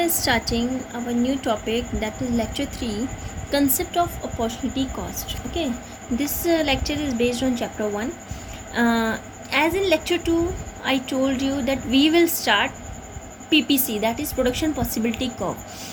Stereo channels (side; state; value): both; identical; correlation 1.00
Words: starting our new topic, that is lecture 3, concept of opportunity cost. Okay, this lecture is based on chapter 1. As in lecture 2, I told you that we will start PPC, that is production possibility curve.